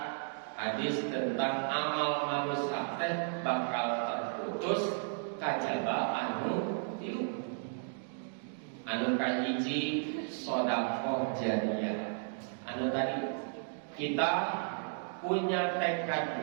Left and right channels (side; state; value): left; silent; digital silence